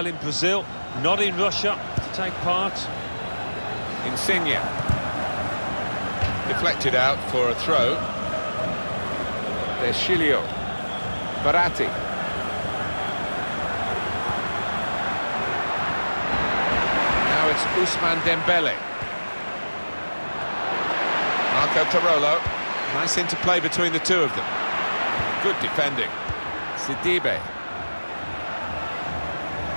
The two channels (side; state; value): both; inverted; correlation -1.00